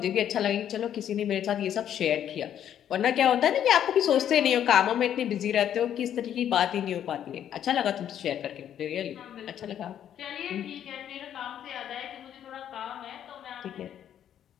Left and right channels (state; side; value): quieter; right; 10.0 dB